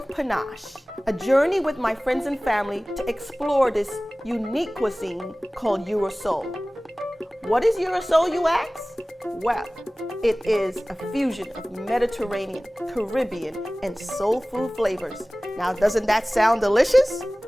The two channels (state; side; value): normal; both; correlation 0.98